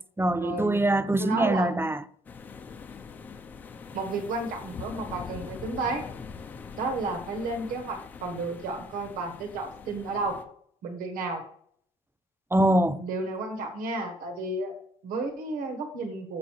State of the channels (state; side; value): normal; both; correlation 0.67